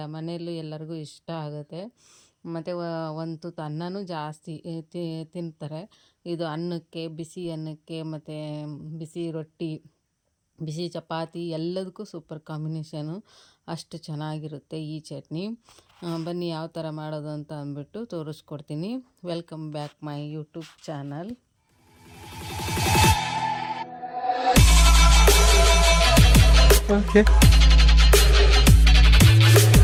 ಮನೆಯಲ್ಲೂ ಎಲ್ಲರಿಗೂ ಇಷ್ಟ ಆಗುತ್ತೆ. ಮತ್ತು ಒಂದು ತುತ್ತು ಅನ್ನನೂ ಜಾಸ್ತಿ ತಿಂತಾರೆ. ಇದು ಅನ್ನಕ್ಕೆ, ಬಿಸಿ ಅನ್ನಕ್ಕೆ, ಮತ್ತು ಬಿಸಿ ರೊಟ್ಟಿ, ಬಿಸಿ ಚಪಾತಿ ಎಲ್ಲದಕ್ಕೂ ಸೂಪರ್ ಕಾಂಬಿನೇಷನು. ಅಷ್ಟು ಚೆನ್ನಾಗಿರುತ್ತೆ ಈ ಚಟ್ನಿ. ಬನ್ನಿ ಯಾವ ಥರ ಮಾಡೋದು ಅಂತ ಅಂದ್ಬಿಟ್ಟು ತೋರಿಸ್ಕೊಡ್ತೀನಿ. Welcome back my YouTube channel.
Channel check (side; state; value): both; identical; correlation 1.00